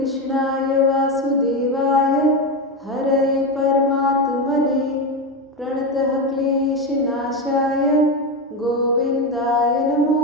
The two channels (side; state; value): both; normal; correlation 0.14